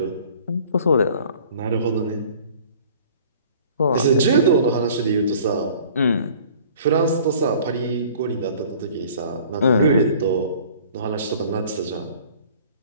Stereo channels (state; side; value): inverted; both; correlation -0.50